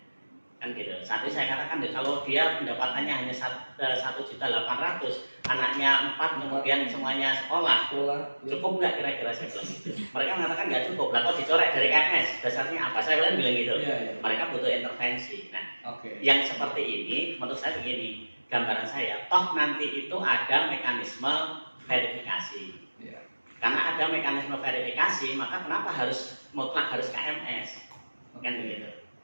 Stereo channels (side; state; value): both; inverted; correlation -1.00